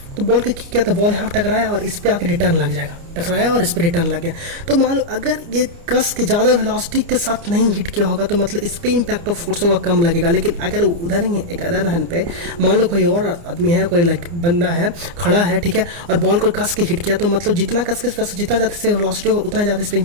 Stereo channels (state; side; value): late; left; 29 ms